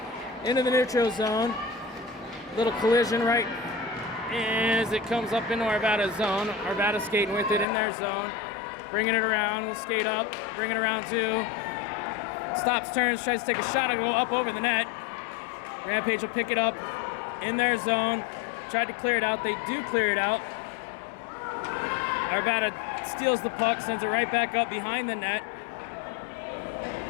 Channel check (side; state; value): right; drops out; at 7.7 s